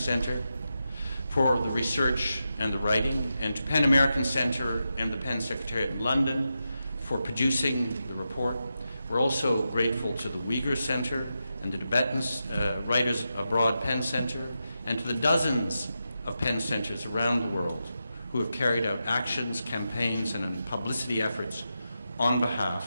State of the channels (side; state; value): both; inverted; correlation -0.88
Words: for the research and the writing, and to PEN American Center and the PEN Secretariat in London for producing the report. We're also grateful to the Uyghur Center and the Tibetan Writers Abroad PEN Center, and to the dozens of PEN centers around the world who have carried out actions, campaigns, and publicity efforts on